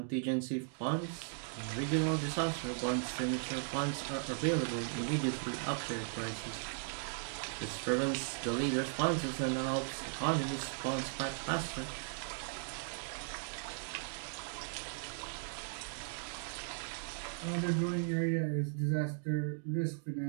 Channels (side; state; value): left; silent; digital silence